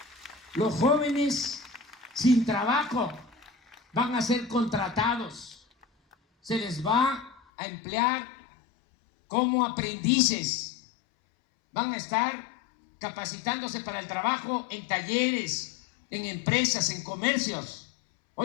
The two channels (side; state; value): right; drops out; at 7.4 s